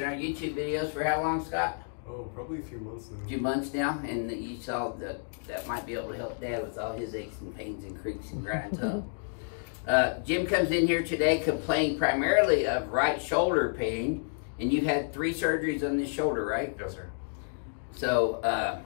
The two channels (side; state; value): right; silent; digital silence